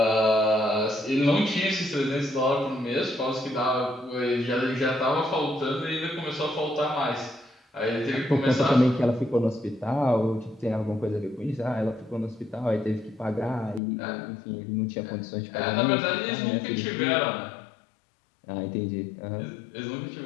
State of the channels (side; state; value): right; drops out; at 13.8 s